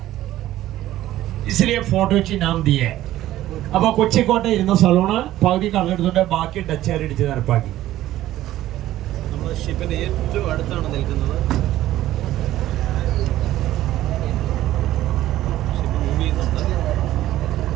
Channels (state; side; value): quieter; left; 14.3 dB